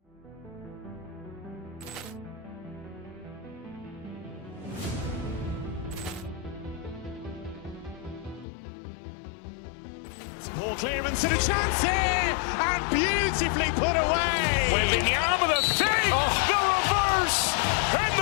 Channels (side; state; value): right; drops out; at 8.5 s